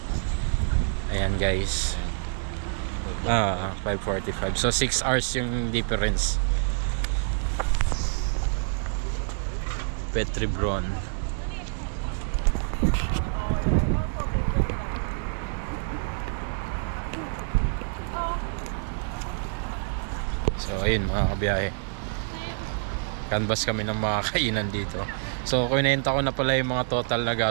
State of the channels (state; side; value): silent; left; digital silence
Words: Ayan guys. 5:45. So 6 hours yung difference. Petribron. So ayun mga kabiyahe, canvas kami ng mga kainan dito. So kunenta ko na pala yung mga total na